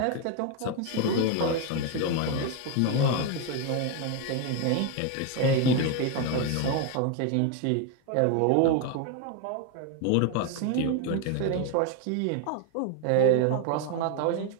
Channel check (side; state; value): both; different; correlation 0.01